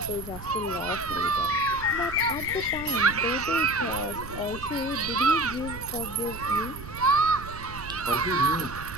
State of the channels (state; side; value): noise; right; rumble, 13 dB below the sound